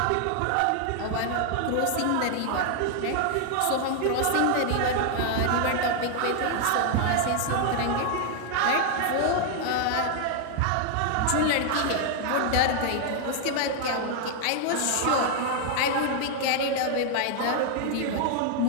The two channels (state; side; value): different; both; correlation 0.00